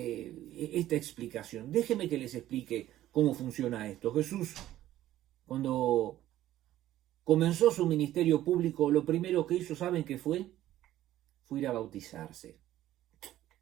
explicación? Déjenme que les explique cómo funciona esto. Jesús, cuando comenzó su ministerio público, lo primero que hizo, ¿saben qué fue? Fue ir a bautizarse.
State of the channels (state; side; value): quieter; left; 13.6 dB